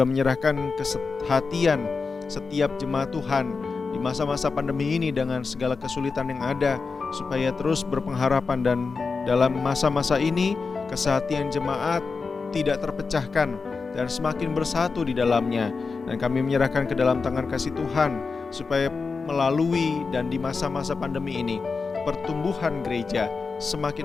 menyerahkan kesehatian setiap jemaat Tuhan di masa-masa pandemi ini dengan segala kesulitan yang ada, supaya terus berpengharapan dan dalam masa-masa ini kesehatian jemaat tidak terpecahkan dan semakin bersatu di dalamnya. Dan kami menyerahkan ke dalam tangan kasih Tuhan, supaya melalui dan di masa-masa pandemi ini pertumbuhan gereja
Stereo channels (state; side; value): quieter; right; 4.6 dB